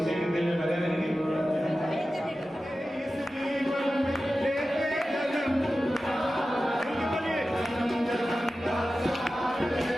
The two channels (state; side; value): normal; both; correlation 0.94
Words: के दिल में बने रहेंगे।